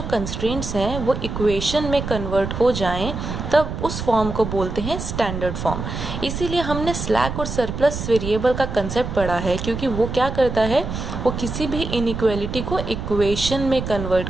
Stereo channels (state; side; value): noise; right; rumble, 6 dB below the sound